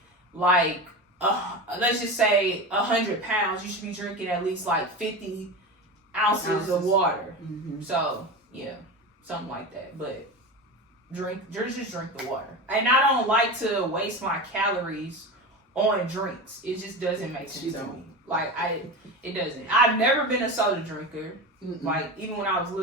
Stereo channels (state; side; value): normal; both; correlation 0.25